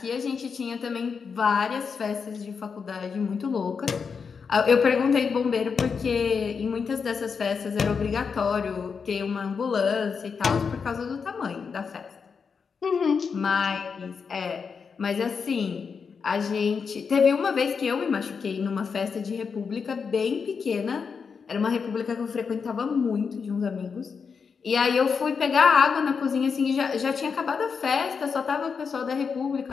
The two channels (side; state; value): right; quieter; 5.8 dB